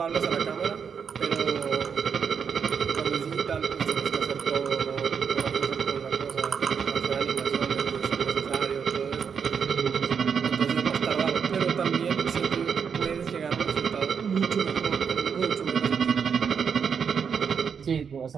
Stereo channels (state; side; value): quieter; left; 6.7 dB